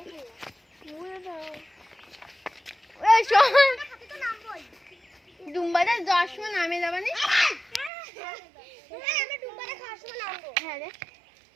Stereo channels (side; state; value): left; drops out; at 7.9 s